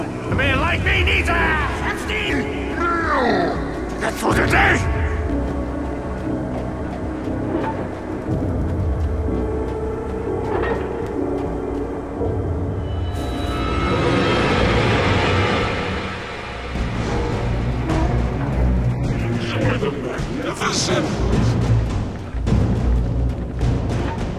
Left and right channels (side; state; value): both; identical; correlation 1.00